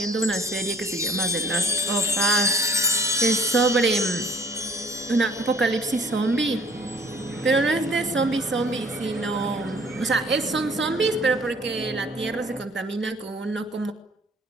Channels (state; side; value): normal; both; correlation 0.55